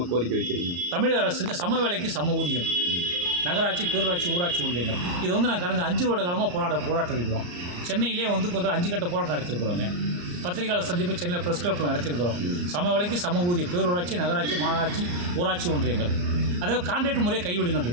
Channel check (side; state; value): left; late; 34 ms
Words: கோரிக்கை வைக்கிறீங்க? தமிழக அரசுக்கு சம வேலைக்கு சம ஊதியம், நகராட்சி, பேரூராட்சி, ஊராட்சி ஒன்றியங்கள். இது வந்து நான் கடந்த 5 வருட காலமாக போராட்டம் இருக்கிறோம். சென்னையிலே வந்து கொஞ்சம் 5 கட்ட போராட்டம் நடத்திருக்கிறோங்க. பத்திரிகையாளர் சந்திப்பு சென்னையில் ப்ரெஸ் கிளப்பில் நடத்திருக்கிறோம். சம வேலைக்கு சம ஊதியம், பேரூராட்சி, நகராட்சி, மாநகராட்சி, ஊராட்சி ஒன்றியங்கள். அதாவது கான்ட்ராக்ட் முறையை கைவிடுங்கன்னு